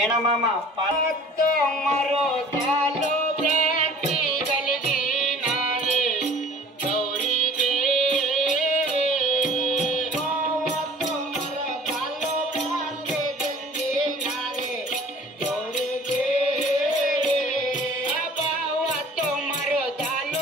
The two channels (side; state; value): both; normal; correlation 0.48